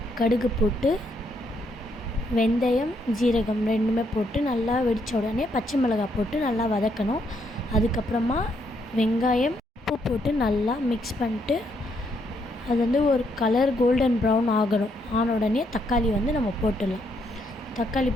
கடுகு போட்டு வெந்தயம், ஜீரகம் ரெண்டுமே போட்டு நல்லா வெடித்த உடனே பச்சை மிளகாய் போட்டு நல்லா வதக்கணும். அதுக்கப்புறமா வெங்காயம், உப்பு போட்டு நல்லா மிக்ஸ் பண்ணிட்டு அது ஒரு கலர் கோல்டன் ப்ரௌன் ஆன உடனே தக்காளி நம்ம போட்டுடலாம். தக்காளி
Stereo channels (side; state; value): both; normal; correlation 0.74